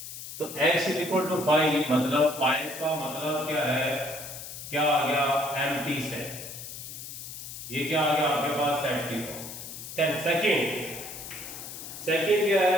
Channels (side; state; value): left; noise; hiss, 10 dB below the sound